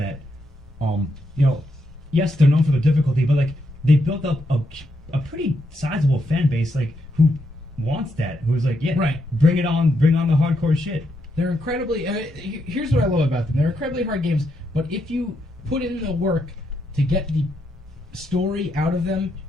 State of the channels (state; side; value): normal; both; correlation 0.80